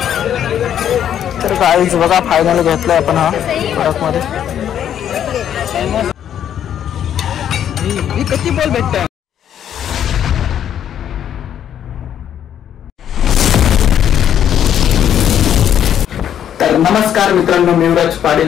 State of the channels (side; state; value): right; quieter; 9.8 dB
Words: तर काहीच बघा फायनल घेतलाय आपण हा प्रोडक्ट मध्ये किती बॉल भेटत तर नमस्कार मित्रांनो मी युवराज पाटील